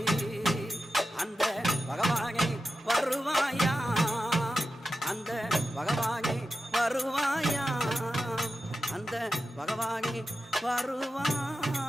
அந்த பகவானே வருவாயா அந்த பகவானே வருவாயா அந்த பகவானே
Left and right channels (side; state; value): both; normal; correlation 0.92